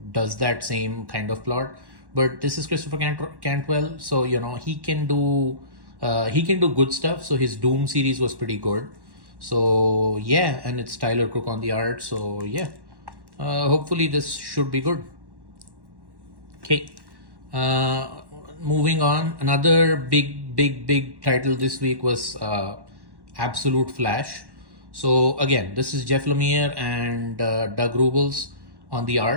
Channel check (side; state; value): left; late; 1.1 ms